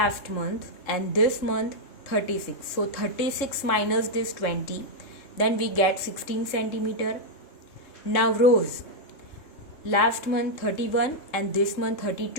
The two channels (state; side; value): late; right; 3.6 ms